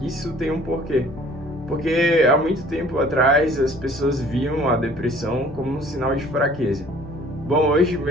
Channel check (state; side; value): normal; both; correlation 0.53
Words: isso tem um porquê. Porque há muito tempo atrás as pessoas viam a depressão como um sinal de fraqueza. Bom, hoje